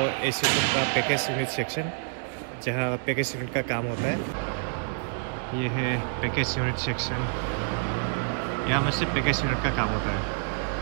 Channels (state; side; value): silent; left; 60 dB below the other